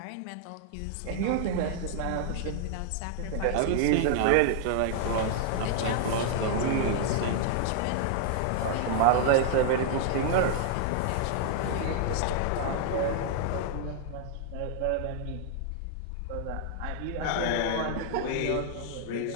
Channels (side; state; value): both; different; correlation 0.00